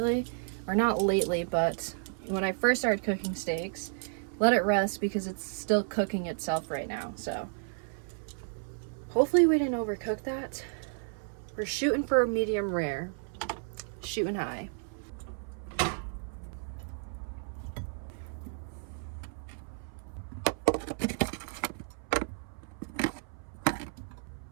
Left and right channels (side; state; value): left; silent; 56 dB below the other